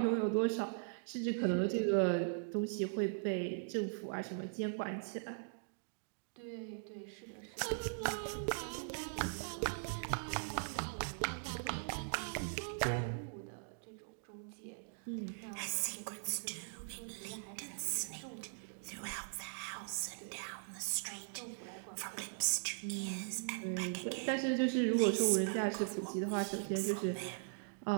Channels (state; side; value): silent; left; digital silence